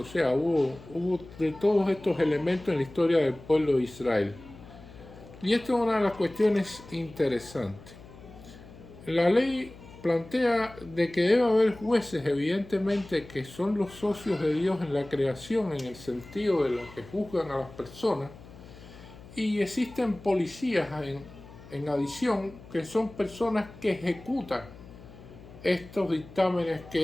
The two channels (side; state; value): left; noise; hum, 19 dB below the sound